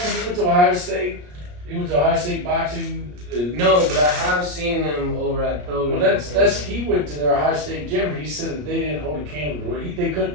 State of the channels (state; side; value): late; left; 34 ms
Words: to Ohio State? You went to Ohio State boxing? No, but I have seen them over at Pilgrim. Well, he went to their Ohio State gym. He said that they didn't hold a candle. They